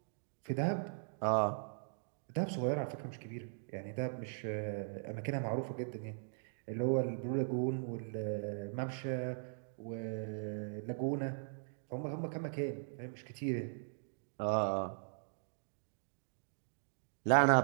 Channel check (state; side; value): silent; left; digital silence